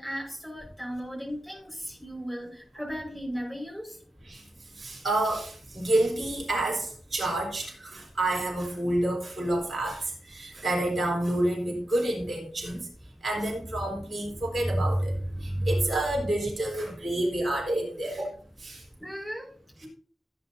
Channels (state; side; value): normal; both; correlation 0.89